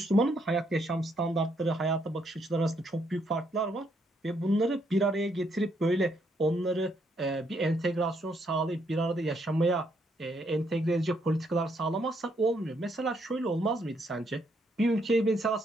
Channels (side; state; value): both; normal; correlation 0.73